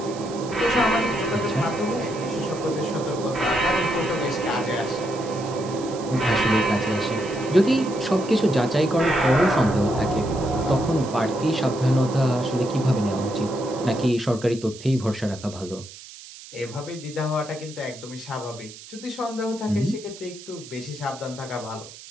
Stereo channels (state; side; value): noise; right; hiss, 17 dB below the sound